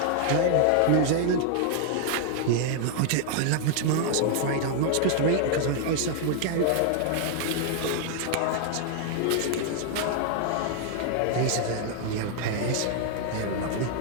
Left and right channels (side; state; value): both; different; correlation 0.00